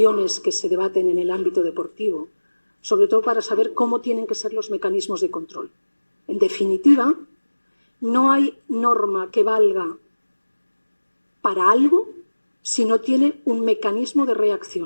que se debaten en el ámbito deportivo, sobre todo para saber cómo tienen que ser los mecanismos de control. En definitiva, no hay norma que valga para algo si no tiene un mecanismo de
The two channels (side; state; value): both; inverted; correlation -1.00